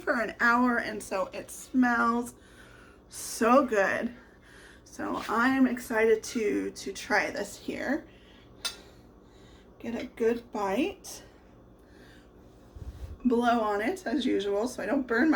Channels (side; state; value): both; identical; correlation 1.00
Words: for an hour, and so it smells so good. So I'm excited to try this here. Get a good bite. Blow on it as usual so I don't burn